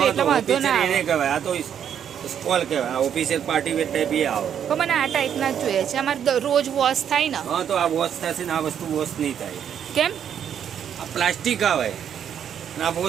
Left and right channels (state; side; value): quieter; left; 8.8 dB